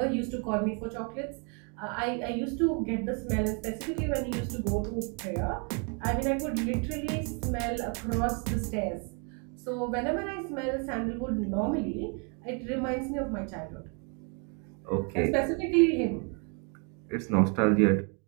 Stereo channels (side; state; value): left; quieter; 37.0 dB